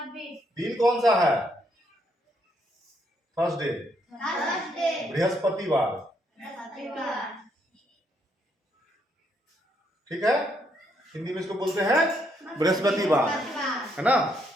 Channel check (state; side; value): normal; both; correlation 0.74